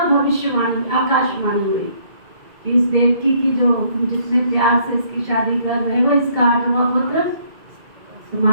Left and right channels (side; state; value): left; late; 2.2 ms